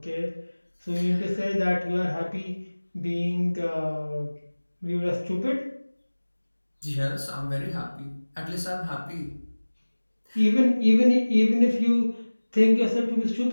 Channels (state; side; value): inverted; both; correlation -1.00